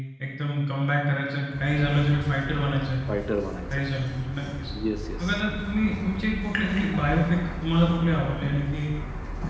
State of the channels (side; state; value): both; identical; correlation 1.00